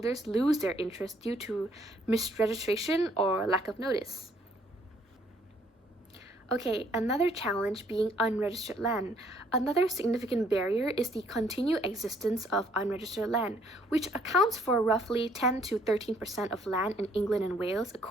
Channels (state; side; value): normal; both; correlation 0.65